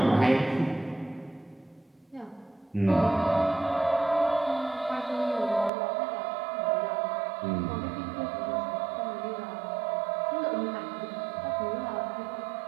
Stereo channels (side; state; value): left; drops out; at 5.7 s